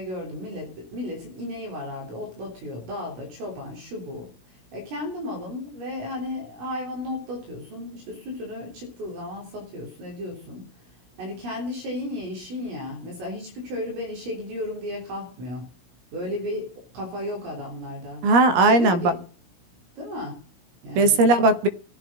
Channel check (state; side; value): late; left; 17 ms